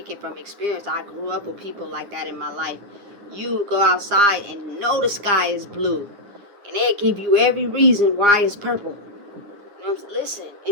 it from experience. I grew up with people like that in my life. You go outside and know the sky is blue, and they'll give you every reason why it's purple. You know what I'm saying?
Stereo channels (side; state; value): left; late; 9.9 ms